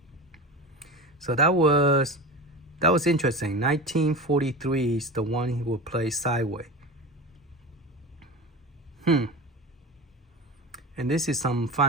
So that was interesting. 1943 is the one he will play sideways. And this is some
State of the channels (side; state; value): both; normal; correlation 0.28